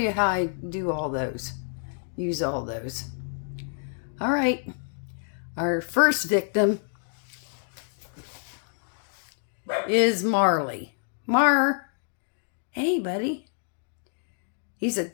how I do all those. Use all those. All right. Our first victim is Marley. Hey, buddy. He's a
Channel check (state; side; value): silent; right; digital silence